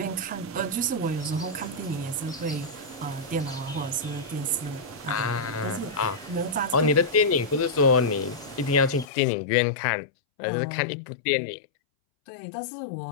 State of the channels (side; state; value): right; drops out; at 9.1 s